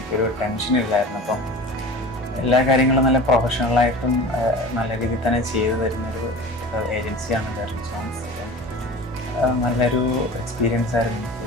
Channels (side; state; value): both; normal; correlation 0.37